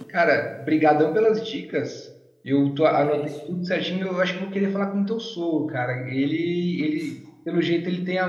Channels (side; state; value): both; identical; correlation 1.00